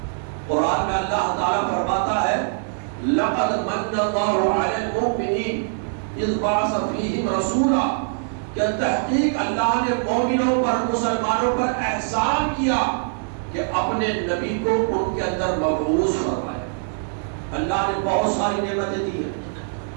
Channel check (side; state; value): left; silent; digital silence